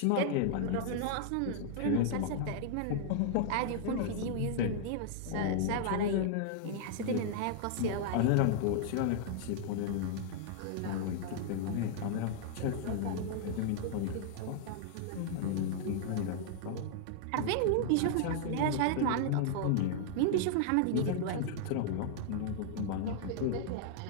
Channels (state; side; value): different; both; correlation -0.01